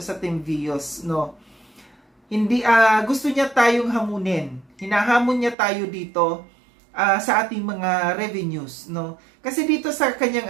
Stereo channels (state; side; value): drops out; left; at 5.6 s